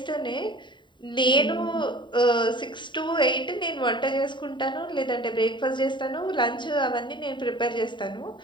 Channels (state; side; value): late; right; 0.23 ms